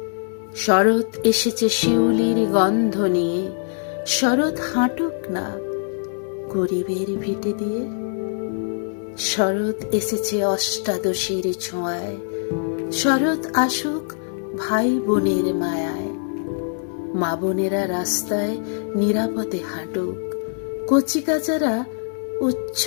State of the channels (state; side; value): silent; right; digital silence